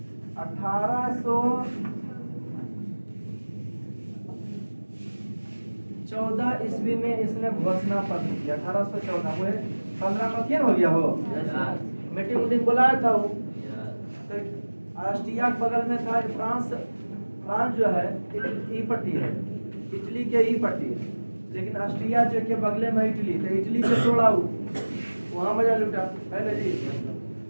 1814 ईस्वी में इसने घोषणा पत्र किया। 1814 वो 15 में क्या हो गया हो मीटिंग उटिंग बुलाया था वो। तो ऑस्ट्रिया के बगल में था फ्रांस। फ्रांस जो है ई पट्टी है, इटली के ई पट्टी है, लेकिन ऑस्ट्रिया जो के बगले में इटली, तो इटली से तोड़ा वहाँ मजा लुटा है ना जी।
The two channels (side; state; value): both; inverted; correlation -1.00